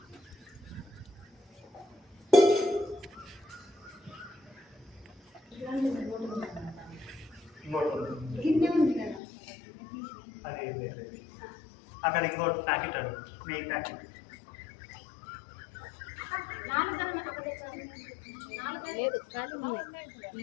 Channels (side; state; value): right; drops out; at 9.2 s